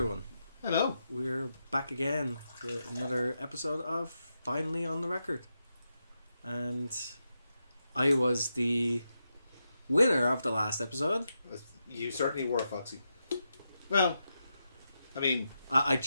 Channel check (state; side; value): inverted; both; correlation -0.86